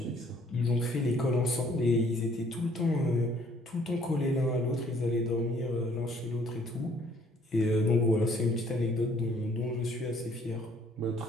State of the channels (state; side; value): normal; both; correlation 0.61